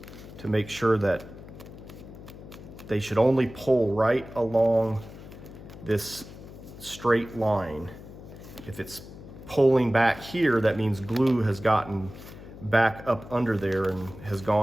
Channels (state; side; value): noise; left; hum, 16 dB below the sound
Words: to make sure that they should only pull right along this straight line. If it's pulling back here, that means glue has gotten back up under there and has